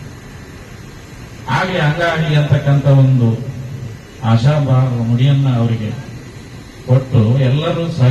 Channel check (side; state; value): both; identical; correlation 1.00